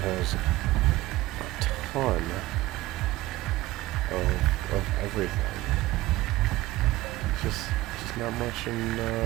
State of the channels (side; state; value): left; quieter; 17.8 dB